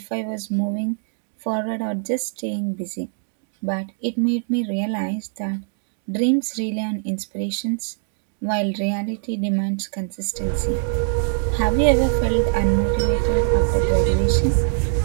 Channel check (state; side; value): silent; left; 64 dB below the other